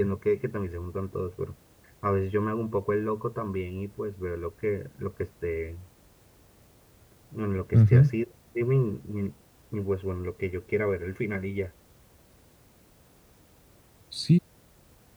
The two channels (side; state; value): both; identical; correlation 1.00